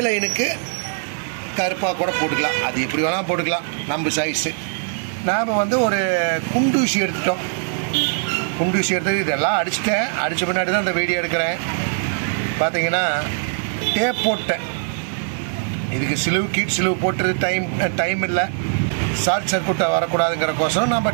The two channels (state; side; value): silent; left; digital silence